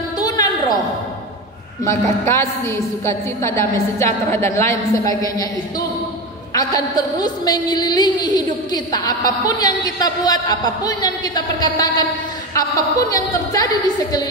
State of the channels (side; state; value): both; normal; correlation 0.21